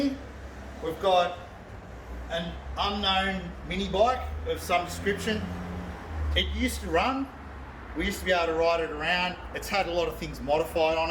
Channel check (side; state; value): both; identical; correlation 1.00